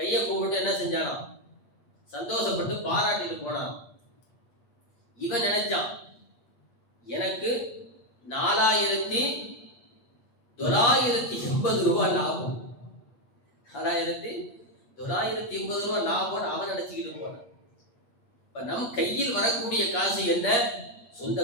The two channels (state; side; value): late; right; 8.5 ms